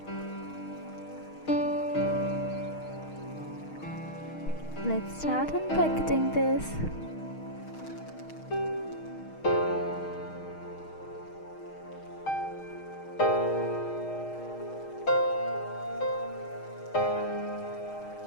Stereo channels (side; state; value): right; late; 6.4 ms